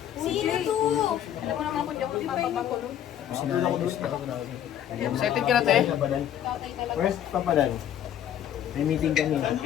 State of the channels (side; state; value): right; quieter; 10.5 dB